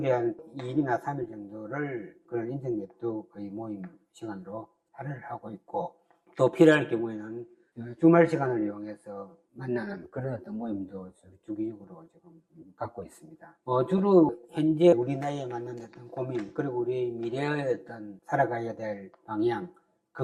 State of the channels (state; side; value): identical; both; correlation 1.00